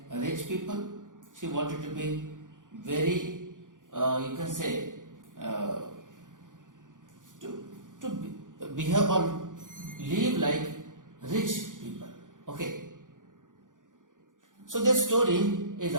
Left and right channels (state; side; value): late; left; 0.88 ms